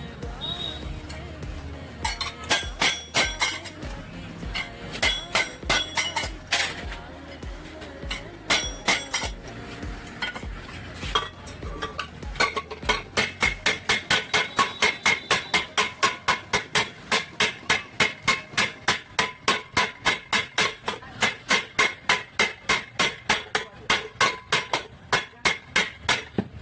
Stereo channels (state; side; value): identical; both; correlation 1.00